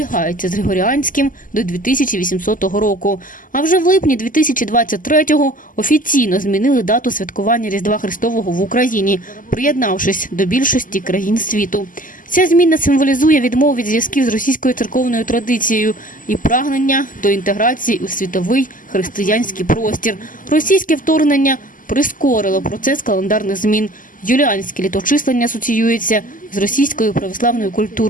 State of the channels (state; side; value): late; right; 0.39 ms